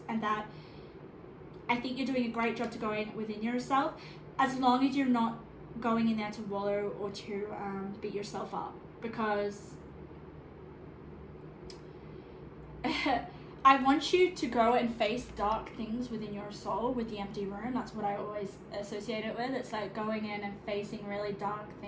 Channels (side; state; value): both; identical; correlation 1.00